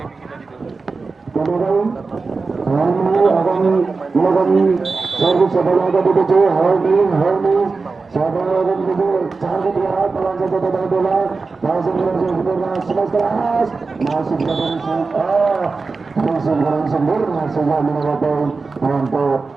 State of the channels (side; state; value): left; quieter; 4.2 dB